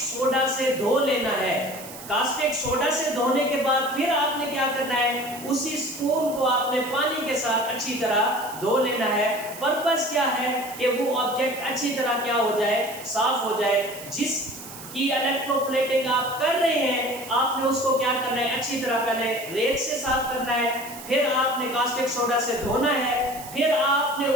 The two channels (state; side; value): noise; right; hiss, 14 dB below the sound